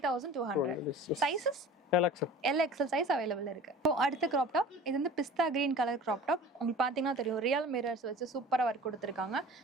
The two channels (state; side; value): normal; both; correlation 0.42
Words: Sizes LXL size available இருக்கு. இப்போ அடுத்த கிராப் டாப். இது வந்து பிஸ்தா கிரீன் கலர் கிராப் டாப். உங்களுக்கு பாத்தீங்கன்னா தெரியும் ரியல் மிரர்ஸ் வச்சு சூப்பரா ஒர்க் கொடுத்துருக்காங்க.